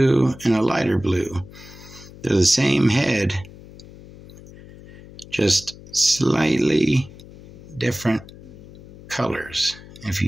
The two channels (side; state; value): left; noise; hum, 19 dB below the sound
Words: and a lighter blue. They're the same head, just slightly different colors, if